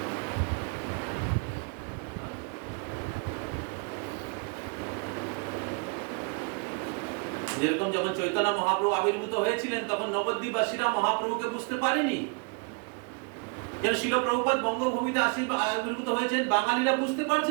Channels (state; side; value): quieter; left; 33.9 dB